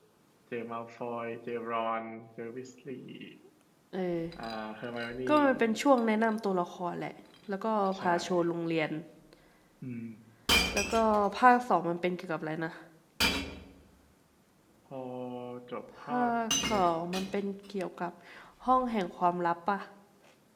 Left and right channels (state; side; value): identical; both; correlation 1.00